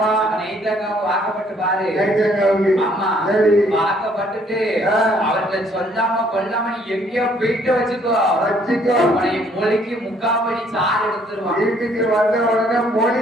நெய்தங்காவுக்கு வாக்கப்பட்டு பாரு. ஆமா, வாக்கப்பட்டுட்டு அவர்களை சொல்லாம கொல்லாம நீ எங்கேயோ போயிட்டு வச்சுக்கோ. அவனை மொழிக்கு முக்காபடி சாறு எடுத்துருவான். வீட்டுக்கு வந்த உடனே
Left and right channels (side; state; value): both; normal; correlation 0.63